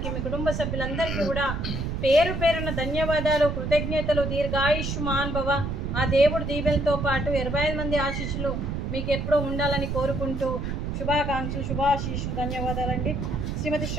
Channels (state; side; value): noise; right; rumble, 3 dB below the sound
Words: మీ కుటుంబ సభ్యులందరికీ కూడా పేరు పేరున ధన్యవాదాలు, కృతజ్ఞతలు. దీర్ఘాయుష్మాన్ భవ. ఆ దేవుడు దీవెలతో పాటు 25 మంది ఆశీస్సులు మీకు ఎప్పుడూ ఉండాలని కోరుకుంటూ, శుభాకాంక్షలు, శుభాశీస్సులు, ధన్యవాదాలండి. శ్రీమతి